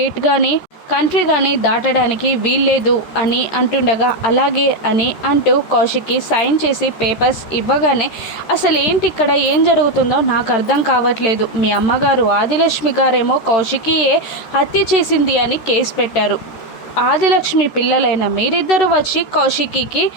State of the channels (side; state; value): right; late; 13 ms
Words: కానీ కంట్రీ కానీ దాటడానికి వీల్లేదు అని అంటుండగా, అలాగే అని అంటూ కౌశికి సైన్ చేసి పేపర్స్ ఇవ్వగానే, అసలు ఏంటి ఇక్కడ ఏం జరుగుతుందో నాకు అర్థం కావట్లేదు, మీ అమ్మగారు ఆదిలక్ష్మి గారేమో కౌశికియే హత్య చేసింది అని కేసు పెట్టారు, ఆదిలక్ష్మి పిల్లలైన మీరిద్దరూ వచ్చి కౌశికికి